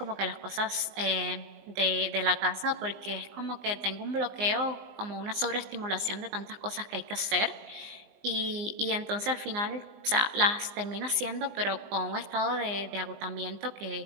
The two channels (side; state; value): left; late; 20 ms